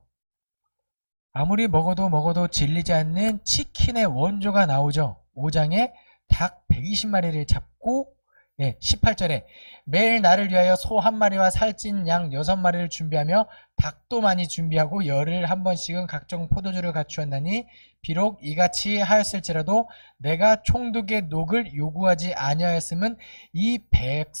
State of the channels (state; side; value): inverted; both; correlation -1.00